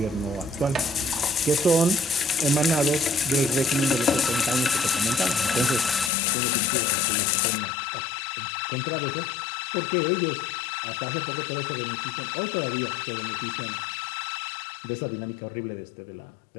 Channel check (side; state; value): right; drops out; at 6.1 s